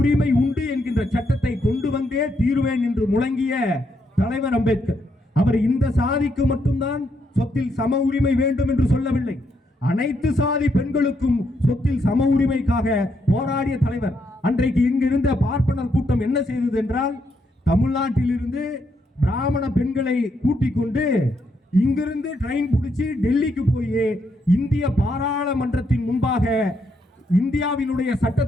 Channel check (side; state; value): both; normal; correlation 0.77